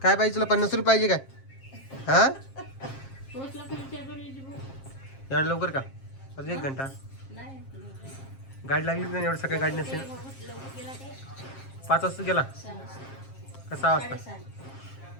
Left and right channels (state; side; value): late; right; 7.5 ms